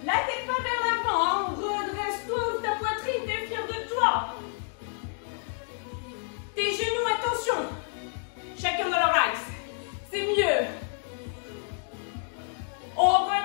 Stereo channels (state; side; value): silent; right; 59 dB below the other